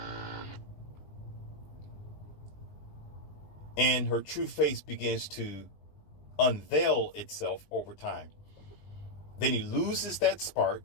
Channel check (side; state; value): right; late; 19 ms